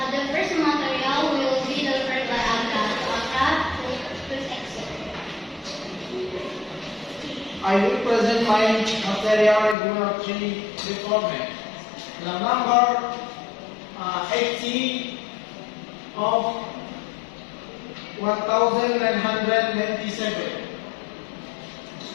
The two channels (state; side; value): drops out; right; at 9.8 s